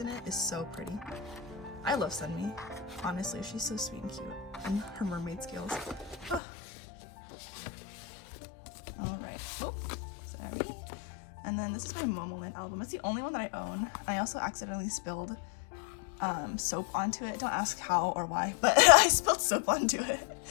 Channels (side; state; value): right; drops out; at 6.4 s